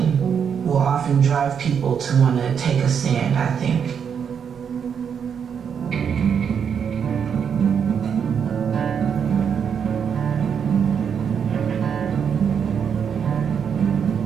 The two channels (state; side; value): quieter; left; 7.3 dB